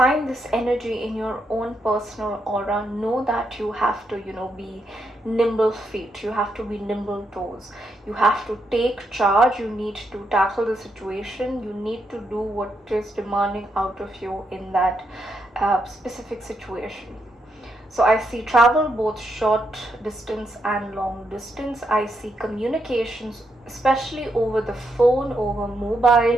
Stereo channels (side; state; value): both; normal; correlation 0.80